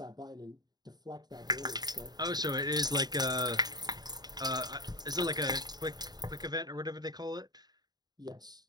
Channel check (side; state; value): left; late; 0.20 ms